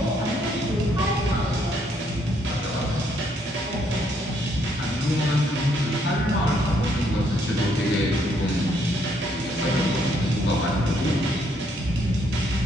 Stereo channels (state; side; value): normal; both; correlation 0.71